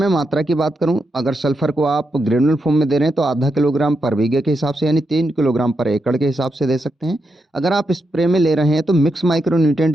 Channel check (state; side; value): normal; both; correlation 0.84